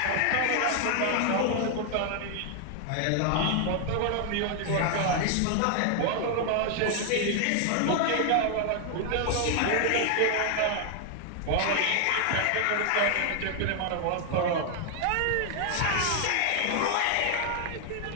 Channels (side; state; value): both; different; correlation 0.00